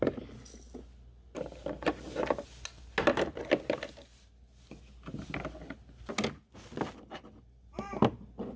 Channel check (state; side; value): identical; both; correlation 1.00